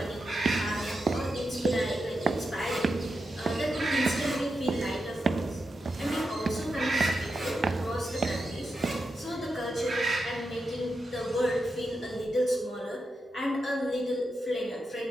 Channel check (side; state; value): both; normal; correlation 0.88